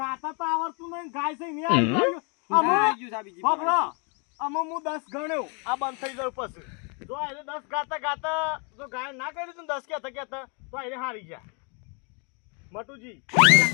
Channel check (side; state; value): right; quieter; 35.2 dB